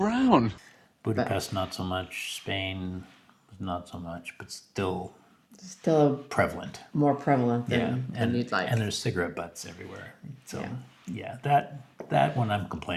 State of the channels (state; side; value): identical; both; correlation 1.00